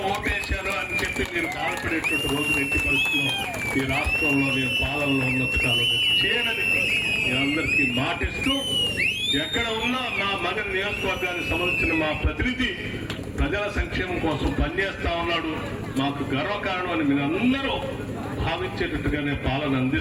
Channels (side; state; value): both; identical; correlation 1.00